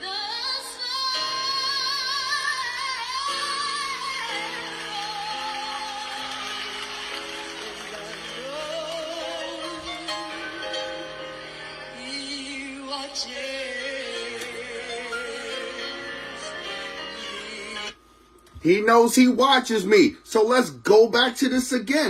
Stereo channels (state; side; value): identical; both; correlation 1.00